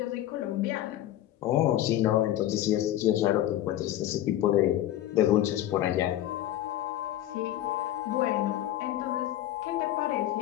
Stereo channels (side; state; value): right; quieter; 13.2 dB